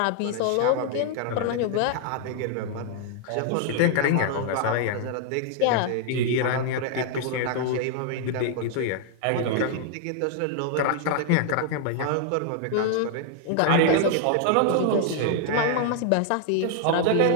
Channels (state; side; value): different; both; correlation 0.00